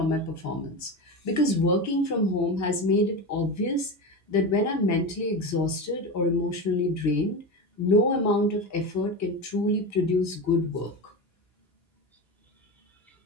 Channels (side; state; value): both; normal; correlation 0.22